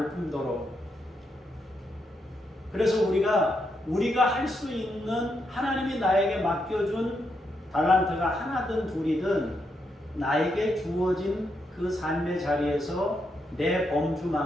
뿐더러. 그래서 우리가 할 수 있는 하나님이 나에게 맡겨준 달란트가 하나든 둘이든 나에게 주어진 그 삶의 자리에서 내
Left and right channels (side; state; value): both; normal; correlation 0.81